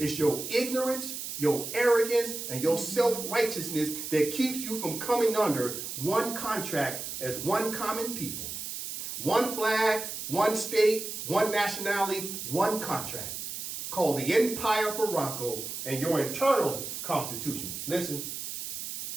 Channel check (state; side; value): noise; right; hiss, 6 dB below the sound